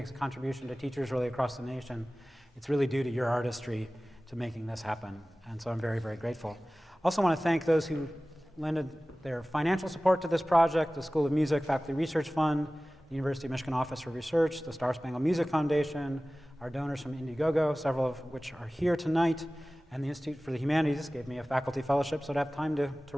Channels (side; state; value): both; normal; correlation 0.97